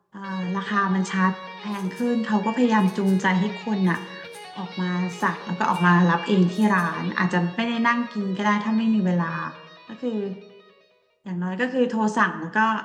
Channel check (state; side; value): identical; both; correlation 1.00